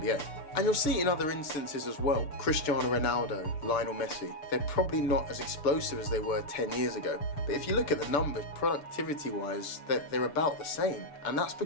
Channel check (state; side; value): late; right; 6.8 ms